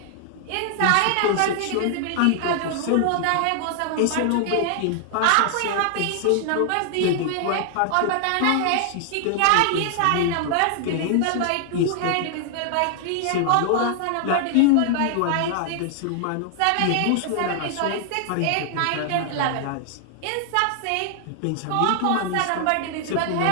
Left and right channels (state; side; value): different; both; correlation 0.00